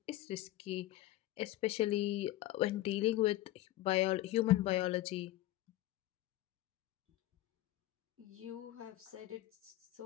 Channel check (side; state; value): right; quieter; 15.6 dB